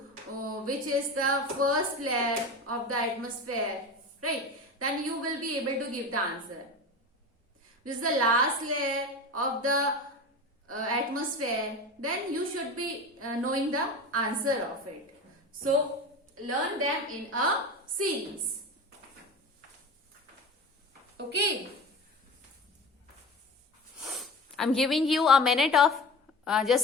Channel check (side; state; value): both; normal; correlation 0.31